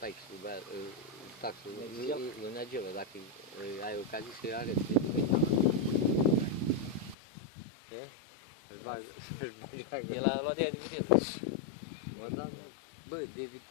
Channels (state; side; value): drops out; right; at 7.2 s